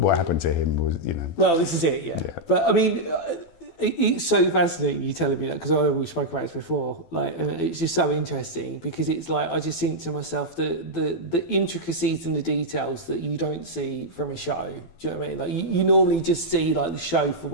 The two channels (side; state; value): right; late; 12 ms